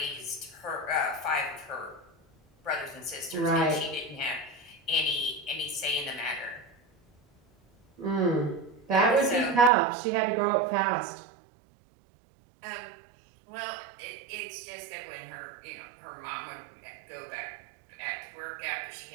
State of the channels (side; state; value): left; drops out; at 9.7 s